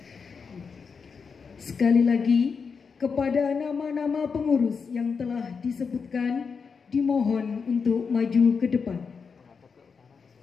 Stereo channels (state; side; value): quieter; right; 5.6 dB